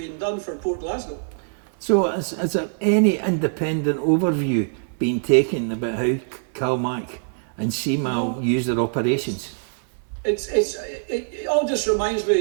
done for Port Glasgow. So has there any independent overview been taken about how CalMac and CMAL use their operations? It all just reminds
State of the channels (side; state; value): left; silent; 63 dB below the other